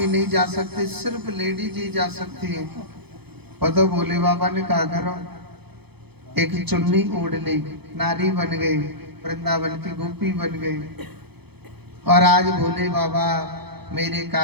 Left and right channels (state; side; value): late; left; 0.98 ms